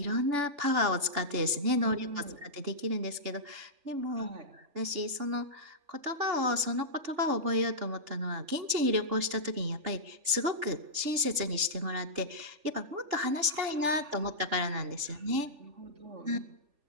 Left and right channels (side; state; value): left; late; 3.4 ms